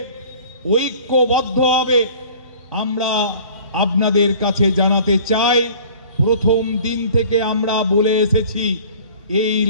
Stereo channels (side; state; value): both; inverted; correlation -0.47